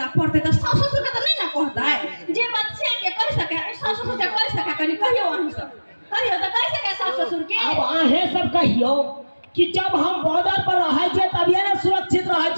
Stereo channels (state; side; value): inverted; both; correlation -1.00